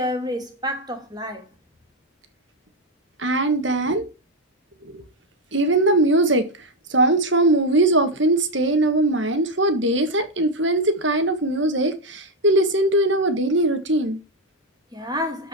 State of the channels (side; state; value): both; normal; correlation 0.06